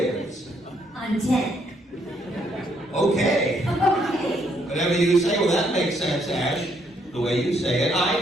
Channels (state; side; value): normal; both; correlation 0.71